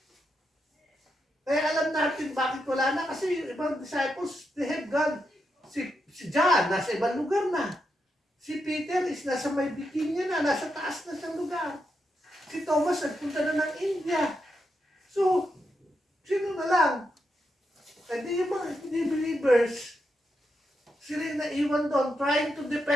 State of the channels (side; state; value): both; normal; correlation 0.84